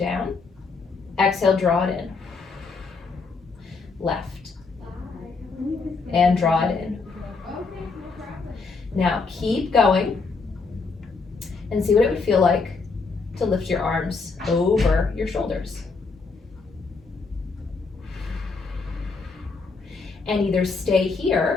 Exhale, draw it in. Left. And draw it in. Now keep going and see what it would feel like to lift your arms over your shoulders. And either stay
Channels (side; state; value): right; quieter; 4.4 dB